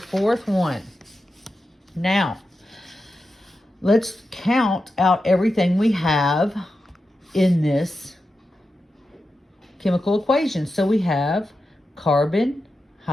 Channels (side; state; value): both; normal; correlation 0.90